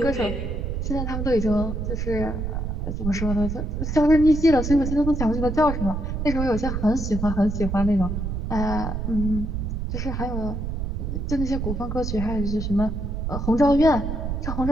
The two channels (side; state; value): right; noise; rumble, 3 dB below the sound